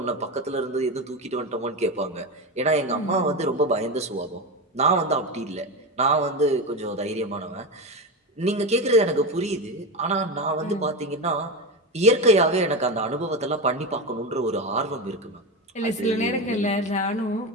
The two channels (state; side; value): normal; both; correlation 0.19